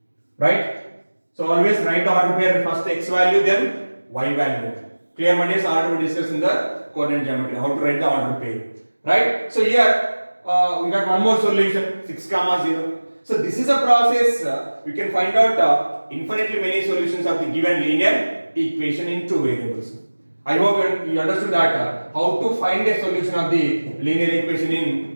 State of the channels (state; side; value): inverted; both; correlation -1.00